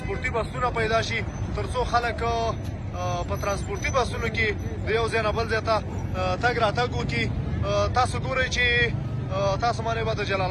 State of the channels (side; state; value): both; identical; correlation 1.00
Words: بسونه پیدا شي، تر څو خلک په ترانسپورتي بسونو کې د یو ځای نه بل ځای ته تګ راتګ وکړي. تاسو ګورئ چې تاسو باندې به د جلال